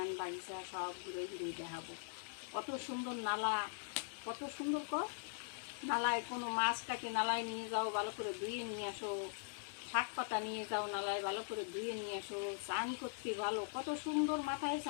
বাগিচা সব ঘুরে ঘুরে দেখাবো। কত সুন্দর নালা, কত সুন্দর নালায় কোনো মাছটাকে নালায় নিয়ে যাও, ভালো করে ধুয়ে নিয়ে আসো, শাক পাতা নিয়ে যাও নালায়, ভালো করে ধুয়ে নিয়ে আসো, চান করতে ভালো, কত সুন্দর মাথায়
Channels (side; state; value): right; silent; digital silence